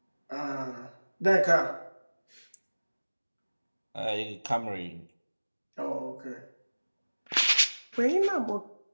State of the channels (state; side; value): inverted; both; correlation -1.00